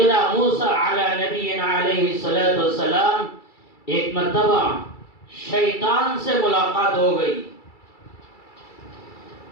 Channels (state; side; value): late; right; 2.3 ms